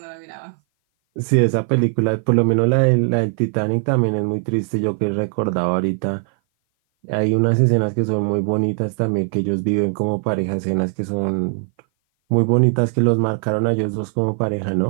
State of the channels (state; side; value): silent; left; 57 dB below the other